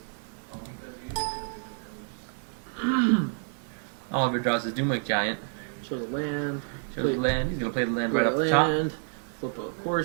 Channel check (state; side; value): silent; left; 59 dB below the other